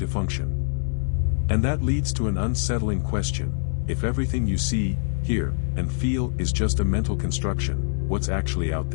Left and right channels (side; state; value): right; silent; digital silence